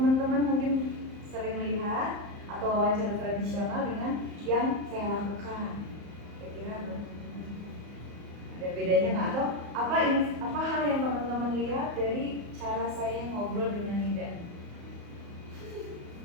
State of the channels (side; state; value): left; late; 34 ms